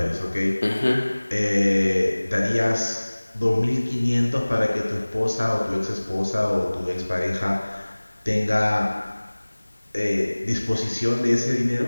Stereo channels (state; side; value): inverted; both; correlation -1.00